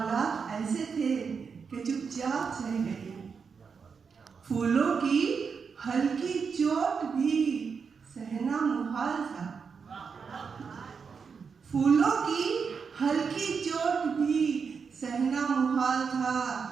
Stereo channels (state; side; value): quieter; left; 5.8 dB